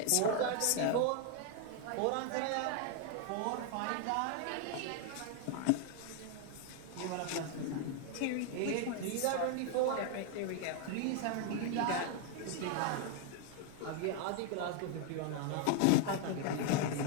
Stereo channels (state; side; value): different; both; correlation 0.01